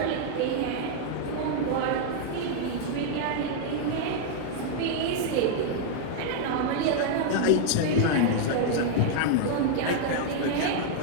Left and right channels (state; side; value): different; both; correlation -0.01